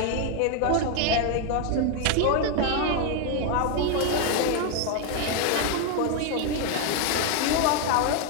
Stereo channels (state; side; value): different; both; correlation 0.00